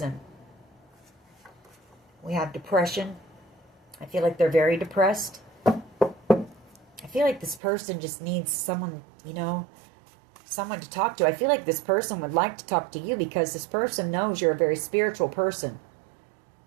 We have depression. I feel like they're very depressed. I feel like this person just needs someone, you know, someone to talk to. I feel like this person would like to talk to you, because this person knows you're a very spiritual person.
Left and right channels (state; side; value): drops out; left; at 7.6 s